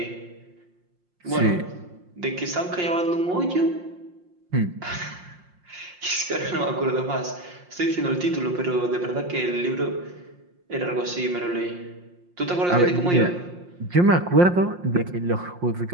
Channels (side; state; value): left; late; 5.6 ms